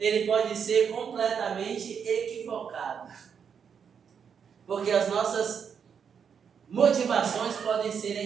pode ser completamente equivocado. Porque as nossas motivações podem ser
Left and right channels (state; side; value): quieter; left; 7.1 dB